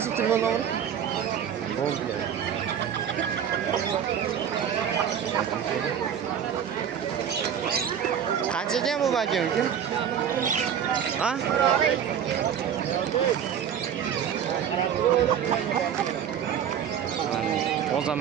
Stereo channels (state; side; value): quieter; left; 8.7 dB